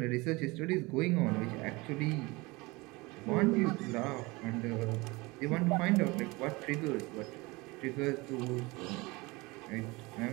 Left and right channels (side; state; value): left; quieter; 23.8 dB